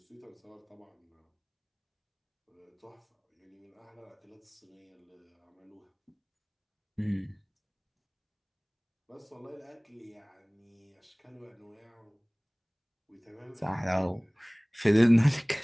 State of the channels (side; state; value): both; identical; correlation 1.00